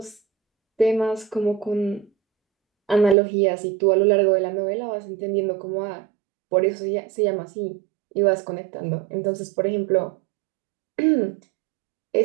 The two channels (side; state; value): left; drops out; at 3.2 s